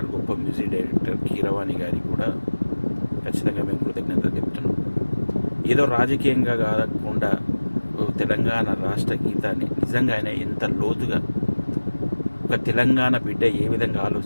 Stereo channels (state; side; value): inverted; both; correlation -1.00